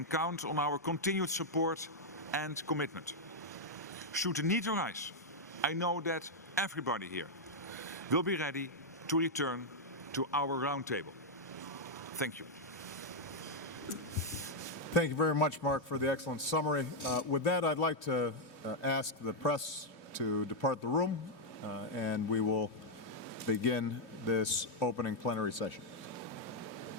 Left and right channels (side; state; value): both; normal; correlation -0.03